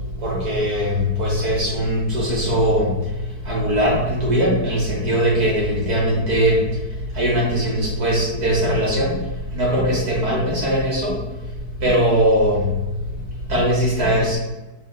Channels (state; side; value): late; left; 4.6 ms